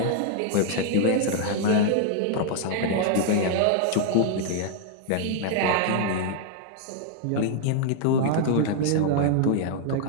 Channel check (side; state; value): both; different; correlation 0.00